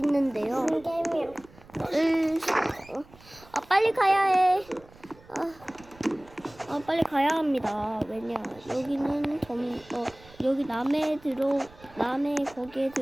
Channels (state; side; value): noise; right; rumble, 24 dB below the sound